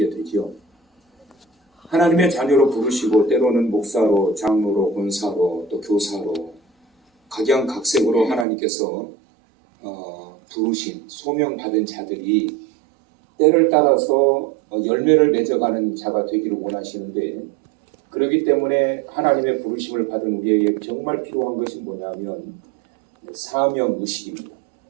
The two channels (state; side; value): drops out; left; at 8.5 s